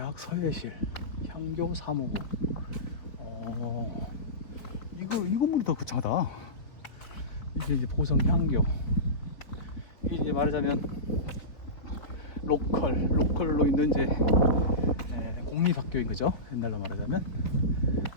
서예실 향교 사무부. 이 건물이 더 거창하다. 이게 이제 보성향교. 이게 이제 말하자면 로컬로 있는 이제 공립학교인 거죠. 옛날로 말하자면.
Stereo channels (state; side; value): late; right; 4.0 ms